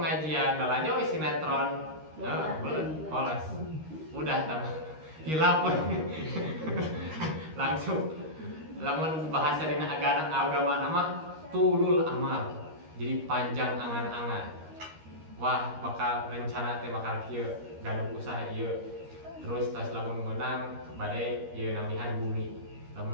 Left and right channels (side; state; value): left; late; 13 ms